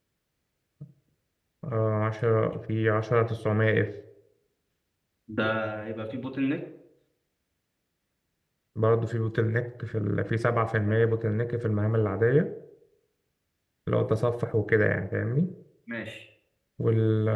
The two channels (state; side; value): identical; both; correlation 1.00